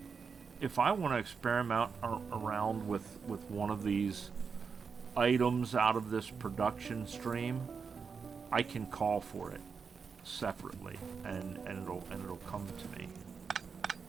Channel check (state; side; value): quieter; left; 5.7 dB